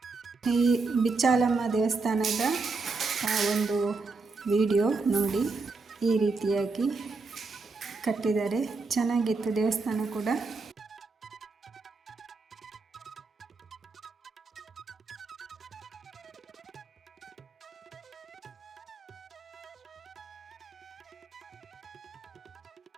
ಈ ಬಿಚ್ಚಾಲಮ್ಮ ದೇವಸ್ಥಾನದ ಒಂದು ವಿಡಿಯೋ ನೋಡಿ. ಈ ರೀತಿಯಾಗಿ ಕಟ್ಟಿದ್ದಾರೆ, ಚೆನ್ನಾಗಿತ್ತು ದೇವಸ್ಥಾನ ಕೂಡ.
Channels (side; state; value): left; quieter; 4.0 dB